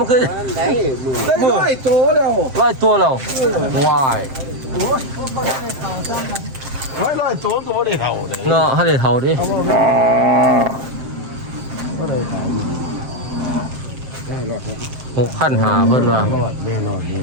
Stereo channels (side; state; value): left; late; 7.6 ms